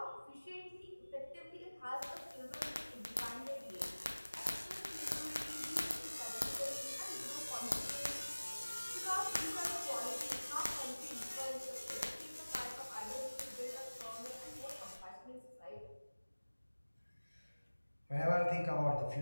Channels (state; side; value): inverted; both; correlation -1.00